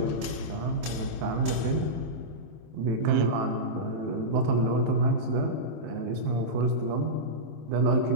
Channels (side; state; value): left; late; 26 ms